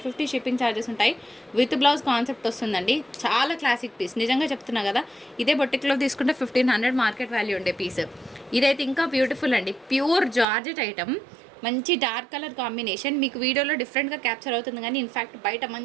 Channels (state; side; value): drops out; left; at 10.5 s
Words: షిప్పింగ్ ఛార్జెస్ ఉంటాయి, విత్ బ్లౌజ్ కాన్సెప్ట్ వస్తుందండి. చాలా క్లాసిక్ పీస్, నిజంగా చెప్తున్నా కదా. ఇదే బొటిక్లో తీసుకుంటే 1500 మార్కెట్ వాల్యూ ఉండే పీస్. ఇదైతే ఇంకా బ్యూటిఫుల్ అండి, ప్యూర్ జార్జెట్ ఐటమ్, మంచి డార్క్ కలర్ కాంబినేషన్. మీకు వీడియోలో డిఫరెంట్గా క్యాప్చర్ అవుతుంది కానీ ఇన్ఫ్యాక్ట్ బయట